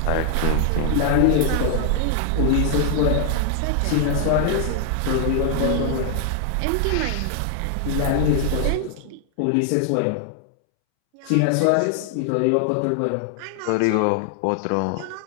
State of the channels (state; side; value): different; both; correlation 0.00